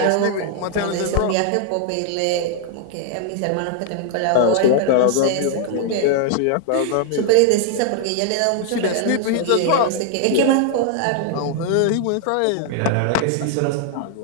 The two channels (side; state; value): both; different; correlation 0.00